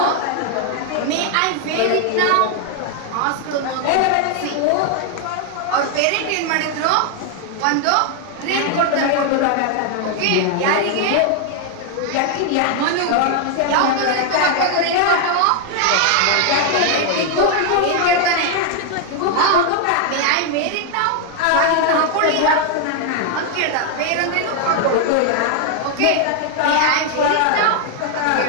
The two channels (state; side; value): different; both; correlation 0.00